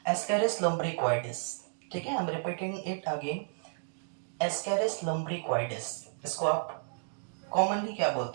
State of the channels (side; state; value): left; silent; digital silence